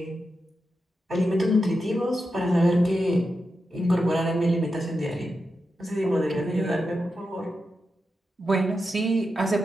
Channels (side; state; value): both; normal; correlation 0.88